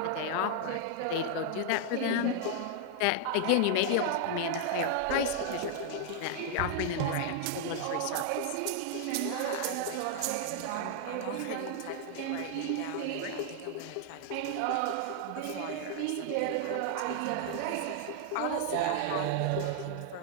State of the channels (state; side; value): different; both; correlation 0.00